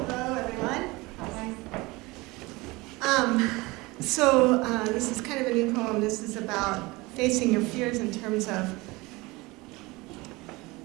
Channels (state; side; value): quieter; left; 22.7 dB